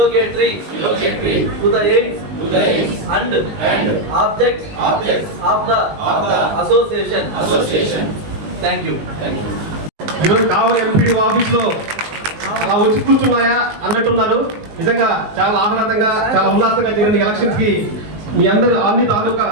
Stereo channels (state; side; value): late; left; 19 ms